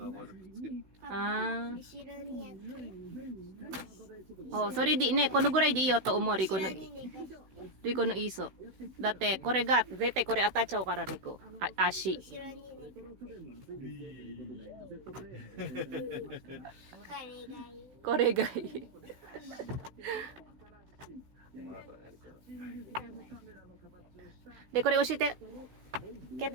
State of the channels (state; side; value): late; left; 16 ms